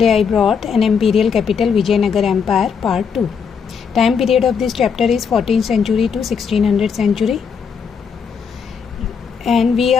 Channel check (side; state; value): right; quieter; 6.4 dB